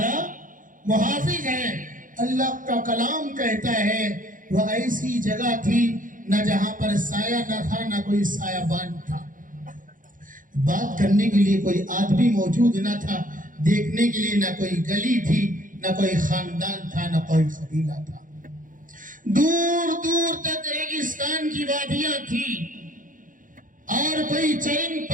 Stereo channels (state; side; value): late; left; 0.39 ms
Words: محافظ ہے؟ اللہ کا کلام کہتا ہے وہ ایسی جگہ تھی نہ جہاں پر سایہ نہ تھا نہ کوئی سایہ بان تھا، بات کرنے کے لیے کوئی آدمی موجود نہ تھا، دیکھنے کے لیے نہ کوئی گلی تھی، نہ کوئی خاندان تھا، نہ کوئی قبیلہ تھا، دور دور تک ریگستان کی وادیاں تھی اور کوئی چرند